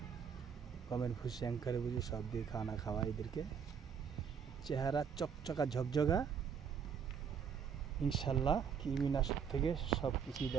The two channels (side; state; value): left; quieter; 7.0 dB